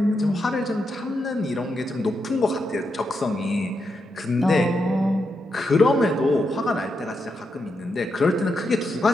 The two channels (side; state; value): both; normal; correlation 0.84